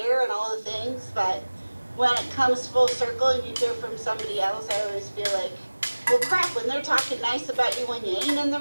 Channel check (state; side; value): inverted; both; correlation -1.00